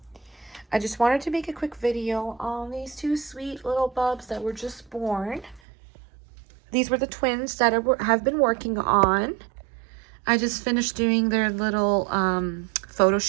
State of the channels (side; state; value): left; drops out; at 5.6 s